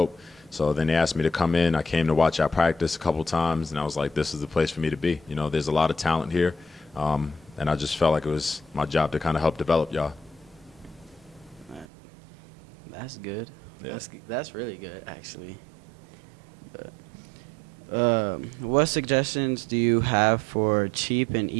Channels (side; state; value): left; drops out; at 11.9 s